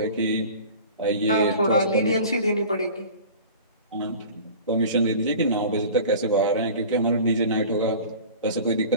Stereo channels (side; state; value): both; inverted; correlation -0.40